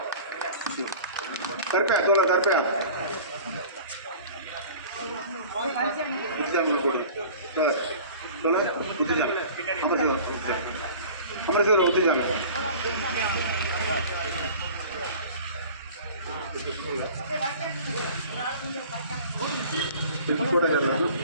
தர்பையா தோழர் தர்பையா அமரசேவர் ஒத்துஞ்சாங்க. கூட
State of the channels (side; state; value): both; inverted; correlation -0.42